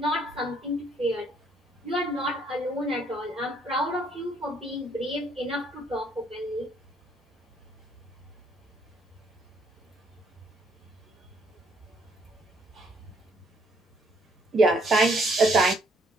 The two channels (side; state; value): both; normal; correlation 0.67